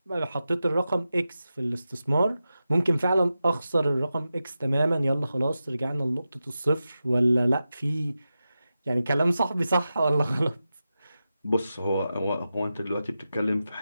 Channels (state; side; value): inverted; both; correlation -0.92